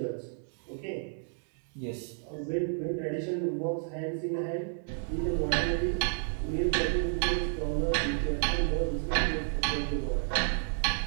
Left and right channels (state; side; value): silent; left; 57 dB below the other